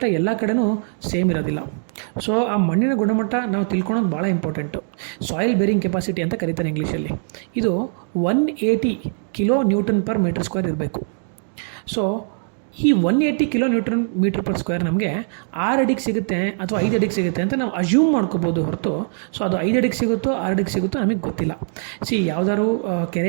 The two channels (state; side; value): silent; left; 59 dB below the other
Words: ಎಲ್ಲ ಕಡೆನೂ ಸೇಮ್ ಇರೋದಿಲ್ಲ. ಸೊ ಆ ಮಣ್ಣಿನ ಗುಣಮಟ್ಟ ನಾವು ತಿಳ್ಕೊಳೋದು ಭಾಳ ಇಂಪಾರ್ಟೆಂಟು. ಸಾಯಿಲ್ ಬೇರಿಂಗ್ ಕೆಪಾಸಿಟಿ ಅಂತ ಕರೀತಾರೆ ಇಂಗ್ಲೀಷಲ್ಲಿ. ಇದು 180 kilo newton per metre square ಇರಬೇಕು. ಸೊ ಈ 180 kilo newton metre per square ನಮಗೆ 6 ಅಡಿಗೆ ಸಿಗುತ್ತೆ ಅಥವಾ 5 ಅಡಿಗೆ ಸಿಗುತ್ತೆ ಅಂತ ನಾವು ಅಸ್ಯೂಮ್ ಮಾಡ್ಕೋಬೋದು ಹೊರತು, ಸೊ ಅದು 5 ಅಡಿಗೆ ಸಿಗುತ್ತೋ 6 ಅಡಿಗೆ ಸಿಗುತ್ತೋ ನಮಗೆ ಗೊತ್ತಿಲ್ಲ. ಯಾವುದಾದ್ರು